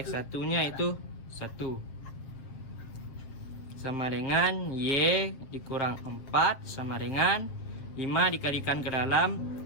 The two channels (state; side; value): late; right; 7.7 ms